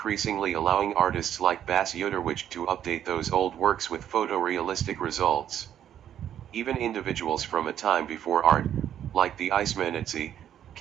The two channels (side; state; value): left; quieter; 10.3 dB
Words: allowing artists like Bas Yoderwich to update those old works with photorealistic results. Even individuals from a time before art, like the Icemanitsi,